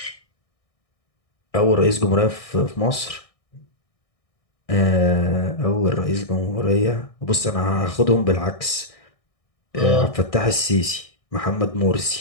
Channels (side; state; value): right; late; 1.6 ms